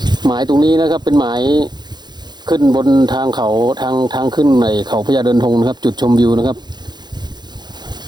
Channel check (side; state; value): left; late; 0.21 ms